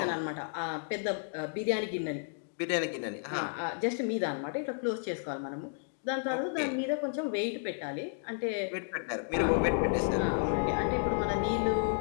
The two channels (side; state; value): right; silent; digital silence